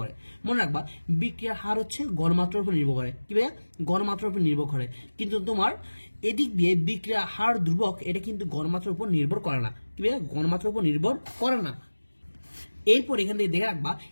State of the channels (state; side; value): inverted; both; correlation -1.00